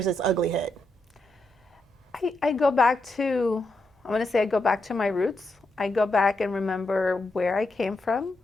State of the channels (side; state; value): both; normal; correlation 0.84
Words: its ugly head? I go back to, I want to say I go back to my roots. I go back and remember where I came from,